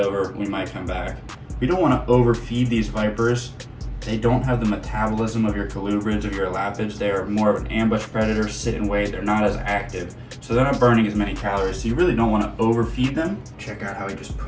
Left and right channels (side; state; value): both; identical; correlation 1.00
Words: we might come back. We don't wanna overfeed these vipers. They don't have the metabolism of your colubrids, of your elapids. They are more of an ambush predator, sit and wait. They're not as active, so they're not burning as many calories. So you really don't want to overfeed them. Check out how he just